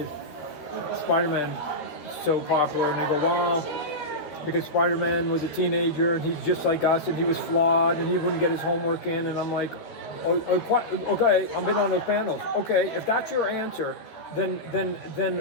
Spider-Man so popular? And they go, well, because Spider-Man was a teenager and he's just like us and he was flawed and he wouldn't get his homework in. And I'm like, okay, I've been on those panels. Okay, if that's your answer, then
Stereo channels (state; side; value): late; right; 13 ms